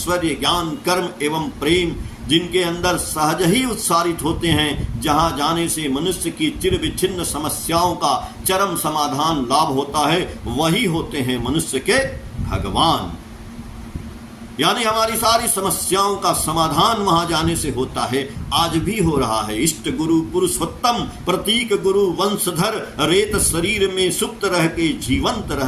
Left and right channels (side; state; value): both; identical; correlation 1.00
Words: ज्ञान, कर्म एवं प्रेम जिनके अंदर सहज ही उत्सारित होते हैं, जहां जाने से मनुष्य की चिर विच्छिन्न समस्याओं का चरम समाधान लाभ होता है, वही होते हैं मनुष्य के भगवान। यानी हमारी सारी समस्याओं का समाधान वहां जाने से होता है। आज भी हो रहा है। इष्ट गुरु पुरुषोत्तम प्रतीक गुरु वंशधर, रेत शरीर में सुप्त रह के जीवंत